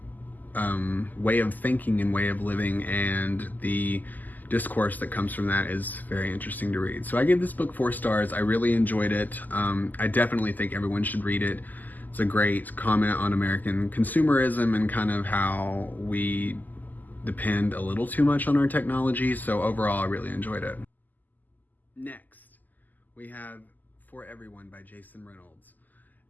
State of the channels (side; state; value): right; late; 0.084 ms